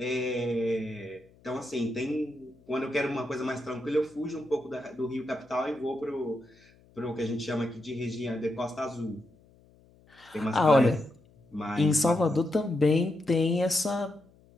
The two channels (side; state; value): left; noise; hum, 29 dB below the sound